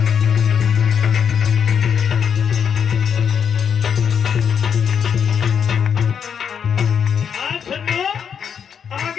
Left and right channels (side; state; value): right; quieter; 7.5 dB